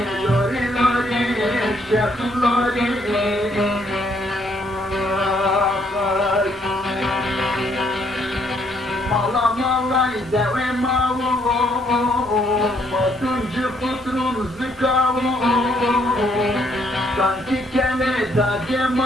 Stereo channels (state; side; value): normal; both; correlation 0.69